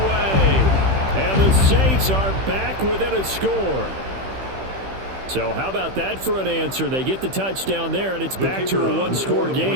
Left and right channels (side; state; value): left; late; 15 ms